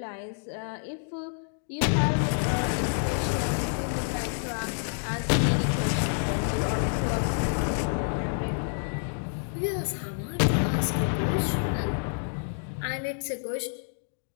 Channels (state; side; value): silent; right; digital silence